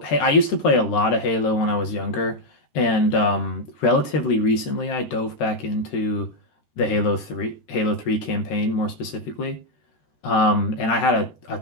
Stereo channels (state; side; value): late; right; 13 ms